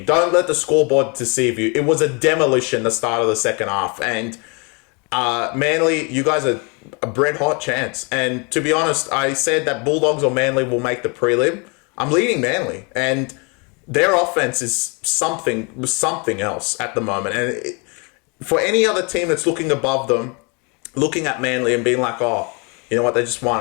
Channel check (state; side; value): quieter; right; 32.3 dB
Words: Don't let the scoreboard deceive you. It was a demolition the start of the second half, and Manly, you guys are a red hot chance. And to be honest, I said that Bulldogs or Manly will make the prelim. I'm leading Manly, and their offense is something else at the moment. And for any other team that's looking above them, looking at Manly and being like, oh, you know what, they just